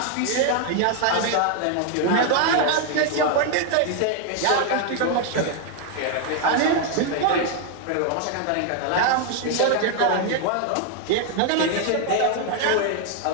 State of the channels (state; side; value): different; both; correlation 0.01